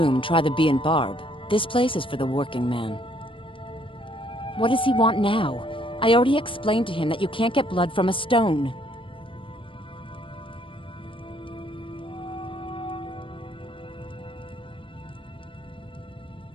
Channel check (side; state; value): right; late; 0.25 ms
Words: try the Bee and Barb. This place is for the working man. What does he want now? I already explained to him that you can't get blood from a stone.